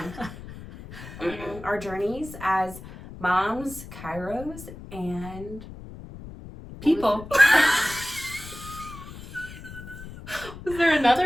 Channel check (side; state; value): left; noise; rumble, 14 dB below the sound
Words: on. Our journeys as moms, chiros, and people. Was there